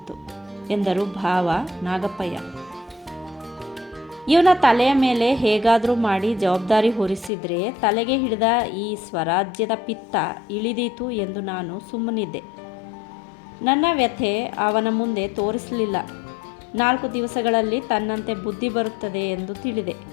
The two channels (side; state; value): right; drops out; at 7.3 s